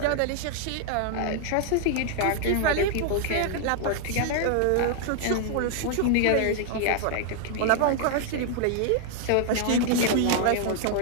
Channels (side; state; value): both; different; correlation 0.00